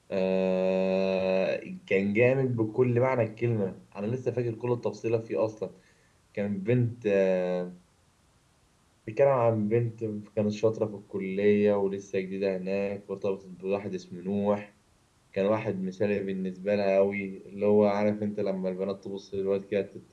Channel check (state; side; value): identical; both; correlation 1.00